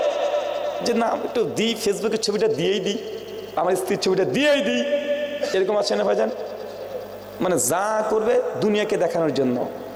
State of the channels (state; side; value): identical; both; correlation 1.00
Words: যে না একটু দিই, ফেসবুকের ছবিটা দিয়েই দিই, আমার স্ত্রীর ছবিটা দিয়েই দিই, এরকম আছে না ভাইজান? মানে যা করবে দুনিয়াকে দেখানোর জন্য